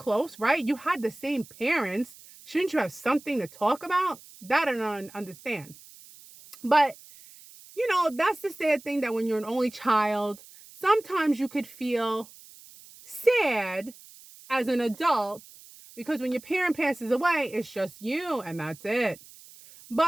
right? You had the same parents. Shouldn't you have something to talk about? That I don't understand. But, that's the sad thing, that when you're an only child, sometimes you could feel sad as an adult because when your parent passes away, it's just you and that's it.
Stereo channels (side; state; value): right; noise; hiss, 21 dB below the sound